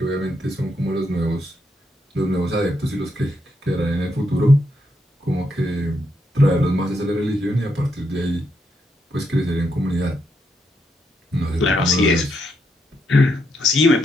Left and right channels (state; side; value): normal; both; correlation 0.79